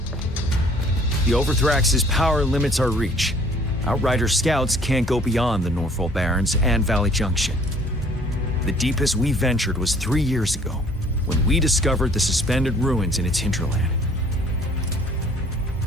The Overthrax's power limits our reach. Outrider scouts can't go beyond the Northfall Barrens and Valley Junction. The deepest we ventured was 3 years ago, when we discovered the suspended ruins in its hinterland.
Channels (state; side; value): normal; both; correlation 0.56